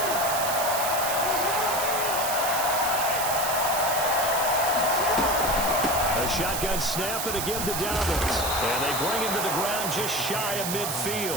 A shotgun snap and a give to Dobbins. And they bring him to the ground just shy of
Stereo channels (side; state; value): right; noise; hiss, 3 dB below the sound